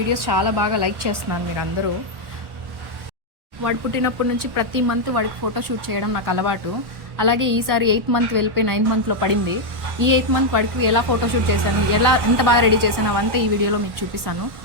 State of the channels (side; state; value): left; late; 1.1 ms